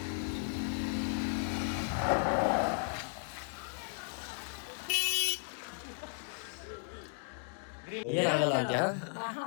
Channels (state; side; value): silent; right; 54 dB below the other